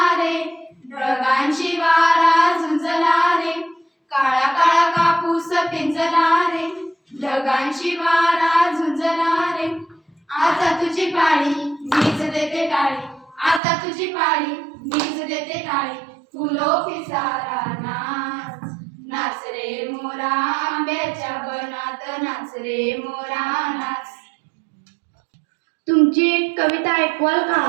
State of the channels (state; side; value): drops out; left; at 13.6 s